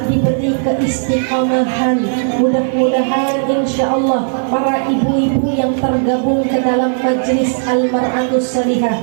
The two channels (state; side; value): silent; left; digital silence